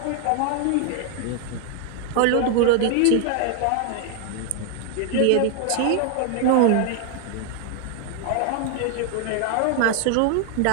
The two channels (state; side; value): different; both; correlation 0.00